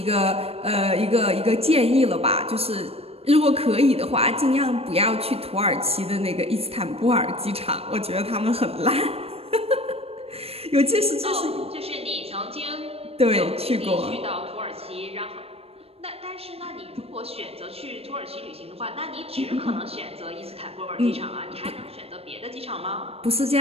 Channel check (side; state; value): left; late; 0.29 ms